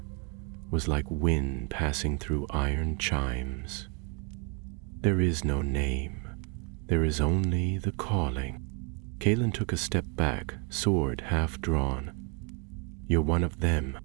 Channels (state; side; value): quieter; left; 34.7 dB